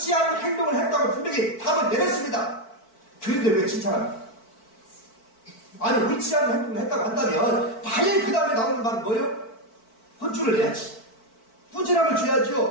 않은 행동을 했다고 분명히 답을 내렸습니다. 그런데 왜 칭찬합니까? 아니, 옳지 않은 행동을 했다고 한다면 당연히 그 다음에 나오는 말은 뭐예요? 혼쭐을 내야지, 부진함을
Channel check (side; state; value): right; late; 4.5 ms